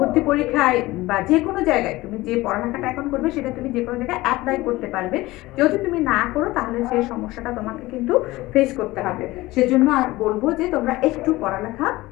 পরীক্ষায় বা যে কোনো জায়গায় তুমি যে পড়ালেখাটা এখন করবে সেটা তুমি যে কোনো জায়গায় অ্যাপ্লাই করতে পারবে। যদি তুমি না করো তাহলে সেই সমস্যাটা তোমাকে কিন্তু ফেস করতে হবে। সেজন্য বলবো যে তোমরা একটু পড়ালেখা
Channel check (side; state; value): right; quieter; 19.1 dB